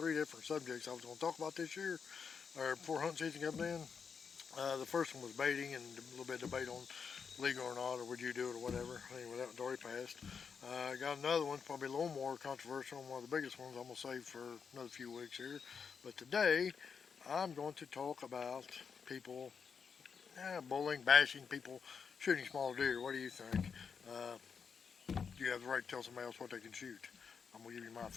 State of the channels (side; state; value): right; quieter; 6.2 dB